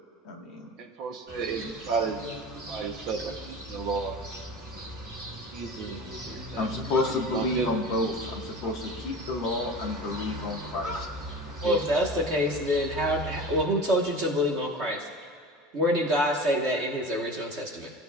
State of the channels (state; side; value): normal; both; correlation 0.35